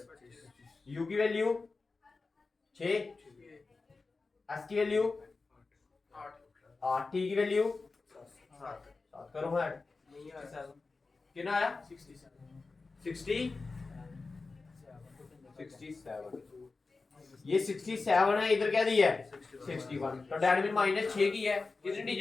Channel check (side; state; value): right; quieter; 3.9 dB